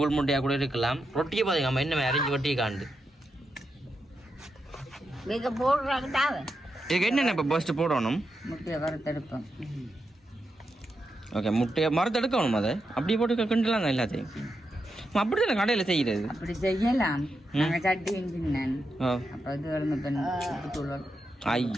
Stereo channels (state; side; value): normal; both; correlation 0.86